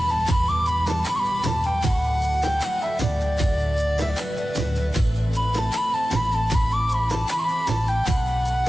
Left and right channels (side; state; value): both; normal; correlation 0.94